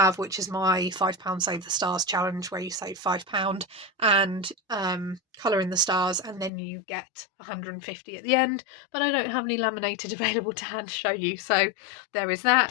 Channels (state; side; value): drops out; right; at 6.5 s